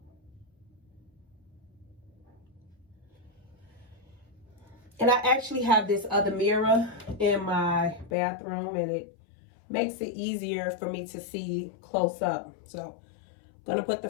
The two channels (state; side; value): drops out; right; at 8.1 s